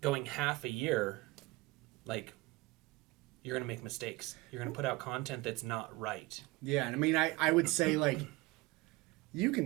going half a year, like, you're going to make mistakes. You're going to put out content that's not right. Yeah, and I mean, I would say, like, you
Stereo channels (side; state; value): left; quieter; 21.5 dB